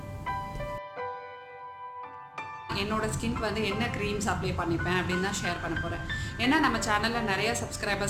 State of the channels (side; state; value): both; identical; correlation 1.00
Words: என்னோடய ஸ்கின்க்கு வந்து என்ன க்ரீம்ஸ் அப்ளை பண்ணிப்பேன் அப்படின்னு தான் ஷேர் பண்ண போகிறேன். ஏன்னா நம்ம சேனலில் நிறைய